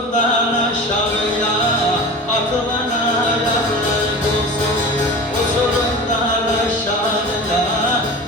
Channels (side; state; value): both; normal; correlation 0.34